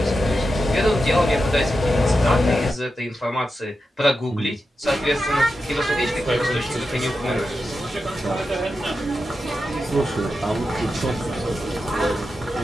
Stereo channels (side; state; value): both; normal; correlation 0.89